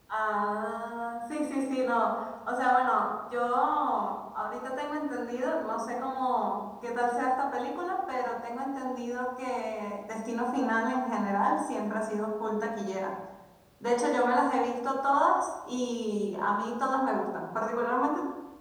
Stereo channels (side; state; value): both; identical; correlation 1.00